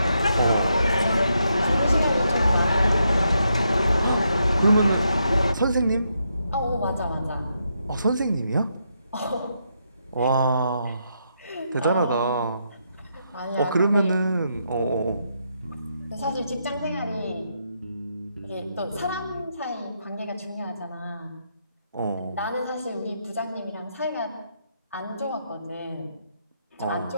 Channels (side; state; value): both; inverted; correlation -0.80